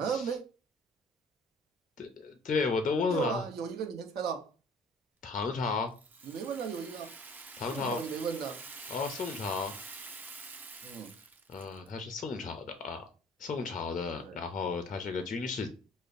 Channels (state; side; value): normal; both; correlation 0.52